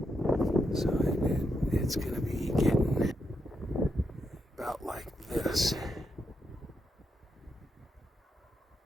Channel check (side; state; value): both; normal; correlation 0.82